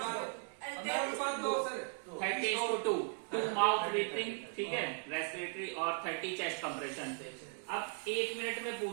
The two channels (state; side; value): silent; left; 53 dB below the other